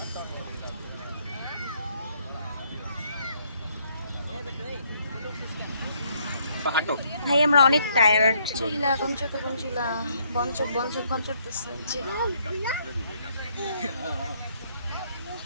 ভাই আমরা অনেক টায়ার্ড চিলা কঞ্চক কঞ্চিলা বঞ্চক বঞ্চক কঞ্চকতেছে যে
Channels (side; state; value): both; inverted; correlation -0.69